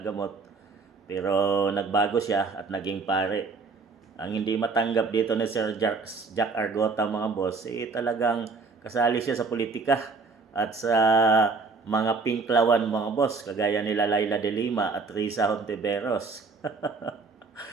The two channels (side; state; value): left; quieter; 4.3 dB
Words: gamot. Pero nagbago siya at naging pare. Ang hindi matanggap dito ni Sir Jack Argota mga boss, talagang kasali siya sa politika at sa mga pinklawan mga boss, kagaya nila Laila de Lima at Risa Hontiveros.